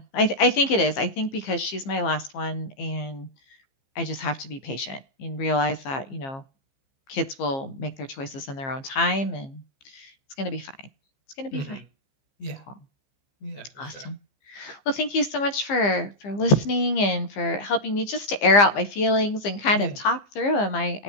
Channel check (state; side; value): late; right; 15 ms